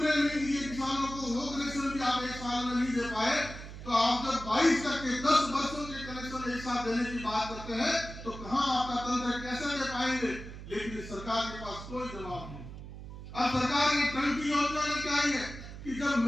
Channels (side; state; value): right; noise; hum, 12 dB below the sound